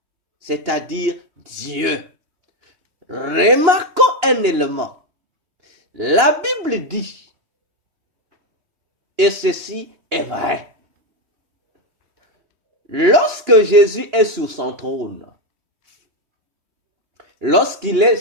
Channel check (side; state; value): left; late; 3.1 ms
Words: c'est-à-dire Dieu. Remarquons un élément. La Bible dit, et ceci est vrai, lorsque Jésus est sur son trône, lorsqu'il est